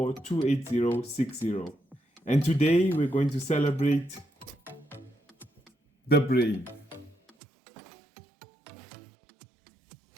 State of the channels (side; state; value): left; drops out; at 7.3 s